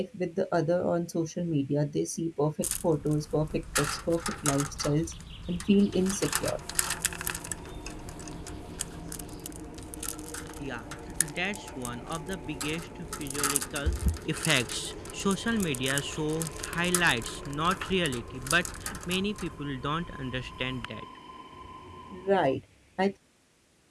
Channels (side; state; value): both; identical; correlation 1.00